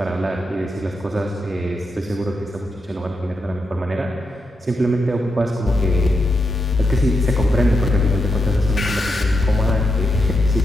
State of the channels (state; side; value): normal; both; correlation 0.84